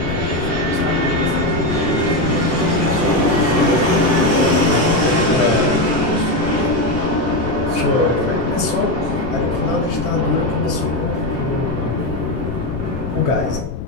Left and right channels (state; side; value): noise; left; rumble, 8 dB below the sound